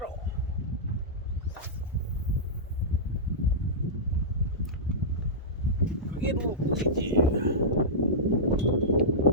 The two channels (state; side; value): normal; both; correlation -0.15